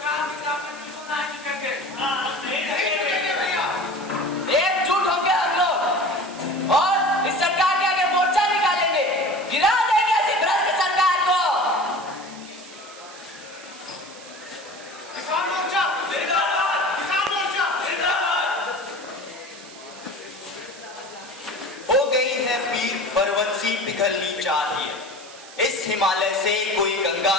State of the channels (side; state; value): right; noise; hiss, 18 dB below the sound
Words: एकजुट होंगे हम लोग और इस सरकार के आगे मोर्चा निकालेंगे, गिरा देंगे ऐसी भ्रष्ट सरकार को। किसान मोर्चा जिंदाबाद, किसान मोर्चा जिंदाबाद। हो गई है पीर परवंशी पिघलनी चाहिए, इस हिमालय से कोई गंगा